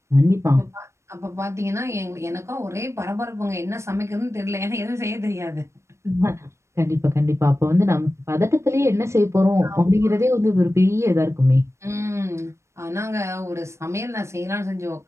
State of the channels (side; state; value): left; late; 0.13 ms